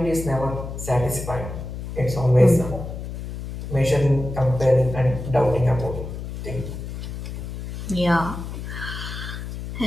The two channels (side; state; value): left; noise; hum, 8 dB below the sound